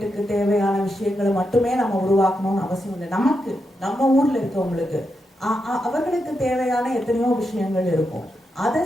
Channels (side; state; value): both; normal; correlation 0.85